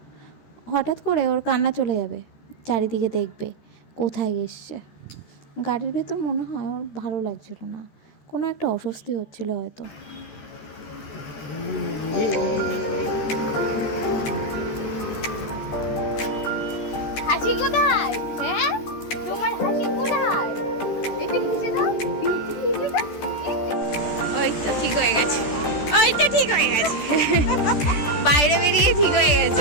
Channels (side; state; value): right; late; 14 ms